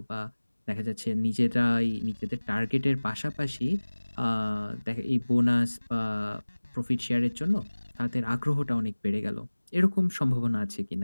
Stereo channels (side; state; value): both; inverted; correlation -1.00